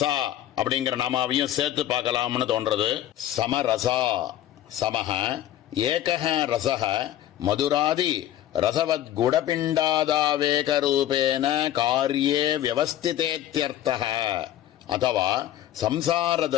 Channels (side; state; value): right; quieter; 12.2 dB